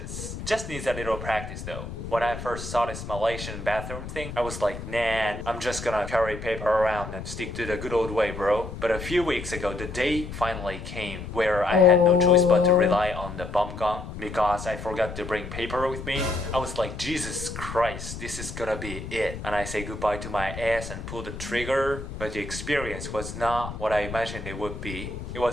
Just needs a little practice though. When I first saw this Malaysian bathroom thing, I was like, nah, I'm just gonna carry paper around and stick to the good old way, bro. But a few weeks ago, the day finally came where I had no choice but to rely on the bomb gun because I forgot to bring paper with me. I was like, Jesus Christ, this is gonna be it. And I say goodbye to my ass and pull the trigger, but the experience was not what I imagined it would be. It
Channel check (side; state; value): left; noise; rumble, 9 dB below the sound